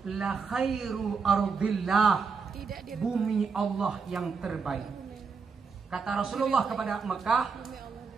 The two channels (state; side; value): quieter; left; 5.3 dB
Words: la khairu ardillah, bumi Allah yang terbaik. Kata Rasulullah kepada Mekah,